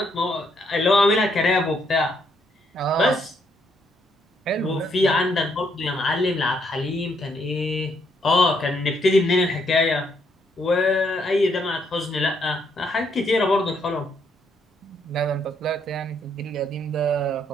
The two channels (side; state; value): both; normal; correlation 0.73